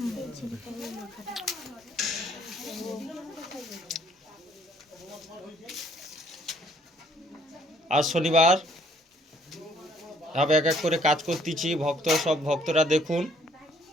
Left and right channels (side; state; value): both; normal; correlation 0.64